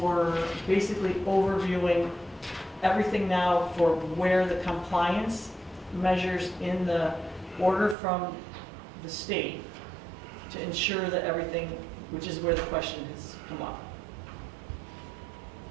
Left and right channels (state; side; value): drops out; left; at 8.0 s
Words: basically overviewing everything now for where the compliance measures in the order from the state to ensure that everything, which is where the question has come up.